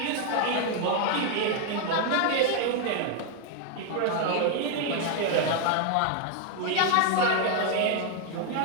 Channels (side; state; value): both; different; correlation 0.00